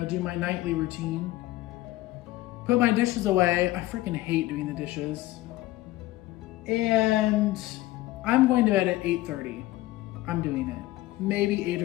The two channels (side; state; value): right; quieter; 17.2 dB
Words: my nightly routine. Put my dishes away. I freaking hate doing the dishes. And I'm going to bed at 8:30. I'm doing it. Maybe 8